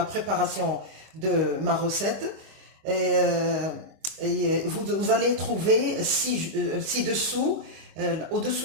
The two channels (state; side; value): late; left; 25 ms